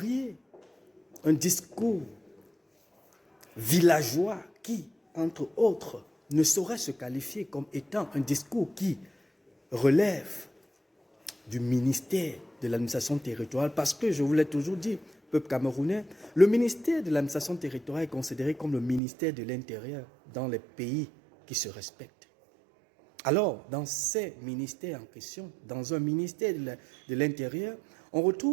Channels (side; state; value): left; drops out; at 19.0 s